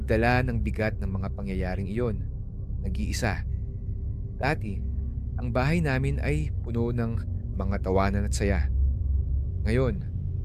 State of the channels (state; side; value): identical; both; correlation 1.00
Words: ng bigat ng mga pangyayaring iyon. Nag-iisa. Dati, ang bahay namin ay puno ng mga tawanan at saya. Ngayon,